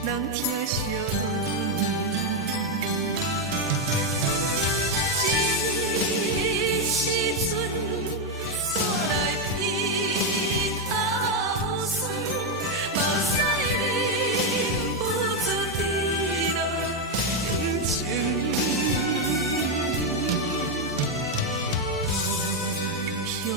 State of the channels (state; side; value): normal; both; correlation 0.04